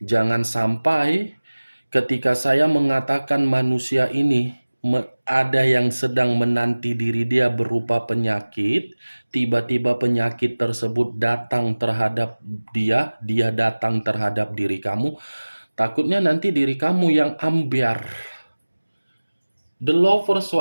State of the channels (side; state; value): both; inverted; correlation -1.00